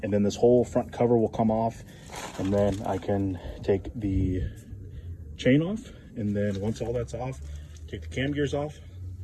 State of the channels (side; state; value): both; identical; correlation 1.00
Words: and then this whole front cover will come off, and then I can take the chain off. And then once all that's off, take the cam gears off,